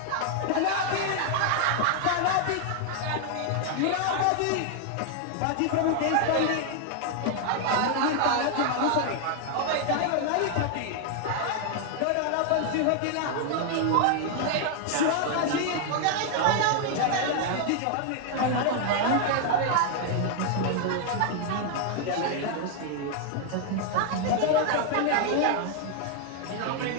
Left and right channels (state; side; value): different; both; correlation 0.00